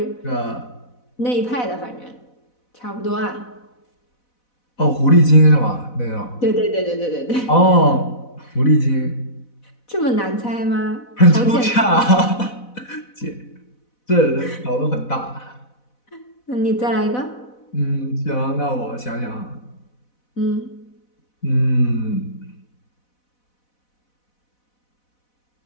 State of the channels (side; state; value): right; late; 4.1 ms